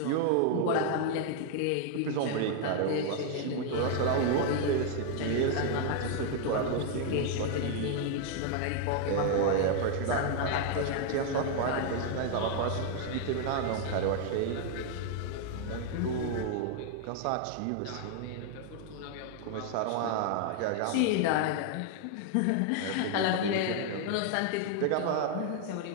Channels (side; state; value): both; different; correlation 0.00